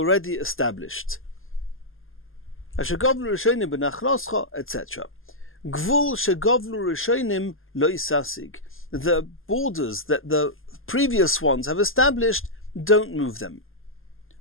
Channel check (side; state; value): right; late; 0.59 ms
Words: established. Asher govlu rishonim benachloscha, etc. Gvul shegovlu rishonim lo isasig. The borders that the previous ones have established, don't move them.